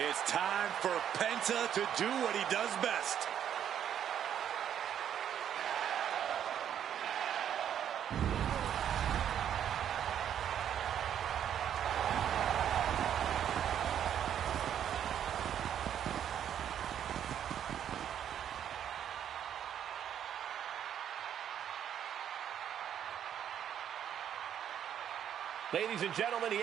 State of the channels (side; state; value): left; quieter; 9.5 dB